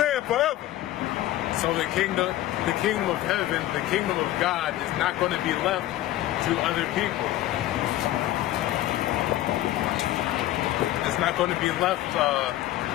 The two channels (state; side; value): quieter; right; 14.7 dB